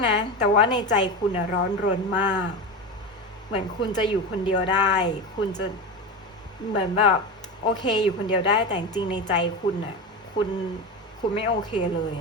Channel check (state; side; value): normal; both; correlation 0.22